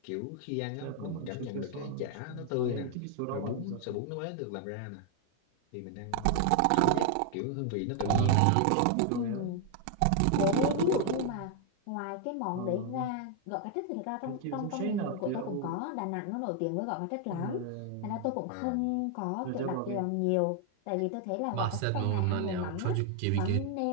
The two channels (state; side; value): different; both; correlation 0.00